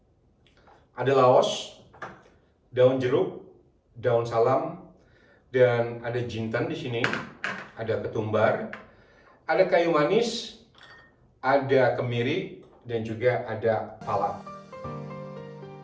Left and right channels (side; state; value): both; identical; correlation 1.00